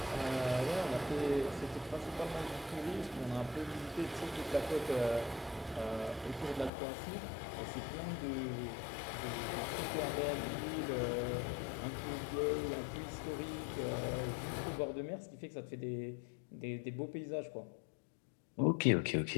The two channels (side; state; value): right; drops out; at 6.7 s